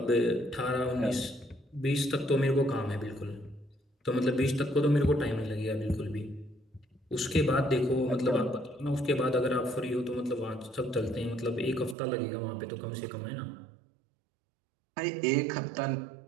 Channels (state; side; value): drops out; left; at 12.0 s